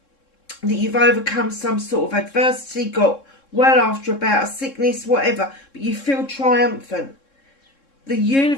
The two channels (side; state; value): right; late; 3.7 ms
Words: that you've overcome some sort of adversity, got well after about a sickness, whatever, but you feel triumphant. The